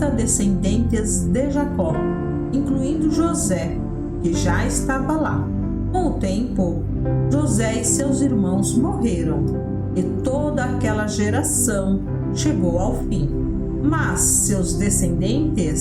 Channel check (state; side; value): identical; both; correlation 1.00